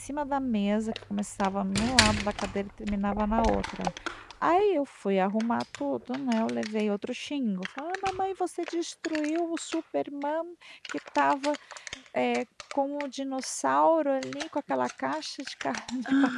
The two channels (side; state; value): both; identical; correlation 1.00